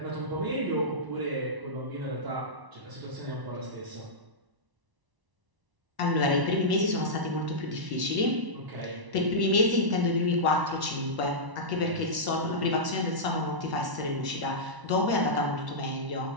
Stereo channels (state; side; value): late; left; 1.0 ms